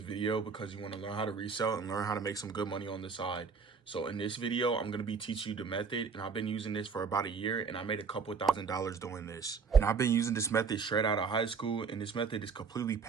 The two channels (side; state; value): left; quieter; 5.4 dB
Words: video because you want to learn how to resell and learn how to make some good money on the side. So in this video, I'm going to be teaching you the method, and I've been using this for about a year, and I made a couple $1,000s doing this. And I've been using this method straight out of high school, and this method is completely